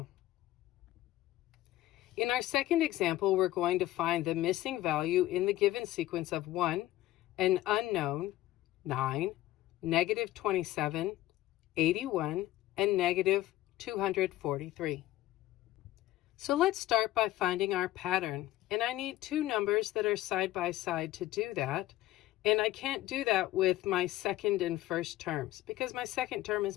In our second example, we're going to find the missing value in the given sequence of 1, an unknown, 9, negative 27, 81, and negative 243. So let's start by finding our pattern. And I need two numbers that are side by side to do that. And I can't do that with my second and first terms because my second term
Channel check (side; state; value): right; quieter; 15.4 dB